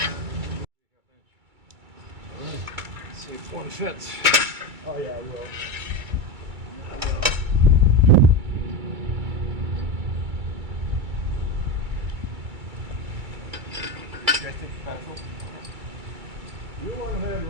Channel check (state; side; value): late; left; 2.3 ms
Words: Let's see if one fits. Oh yeah, I will. You want to have